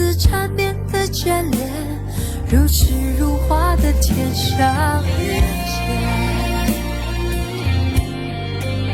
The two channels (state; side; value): identical; both; correlation 1.00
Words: 缠绵的眷恋，如诗如画的天上人间。